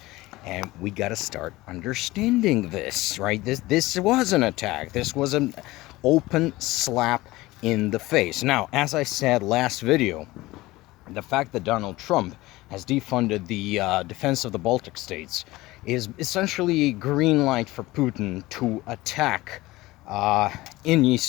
and we got to start understanding this, right? This was an attack. This was an open slap in the face. Now, as I said last video, the fact that Donald Trump has defunded the defense of the Baltic states is essentially a green light for Putin to attack in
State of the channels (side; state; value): right; quieter; 19.1 dB